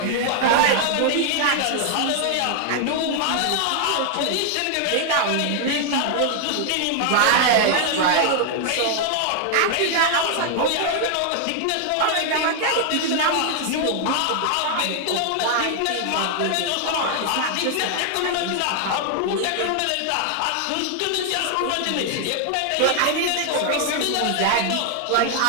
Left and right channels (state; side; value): different; both; correlation 0.00